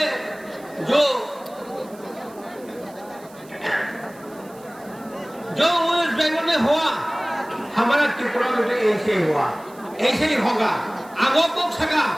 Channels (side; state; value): right; noise; hiss, 25 dB below the sound